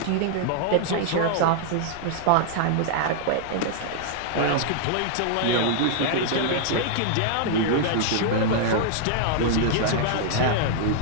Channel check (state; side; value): different; both; correlation -0.01